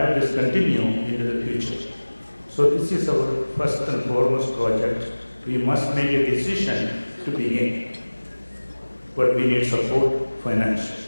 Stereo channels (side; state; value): both; inverted; correlation -1.00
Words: this continue into the future. So this is our first and foremost project. We must make a decision to begin, but we need support financially.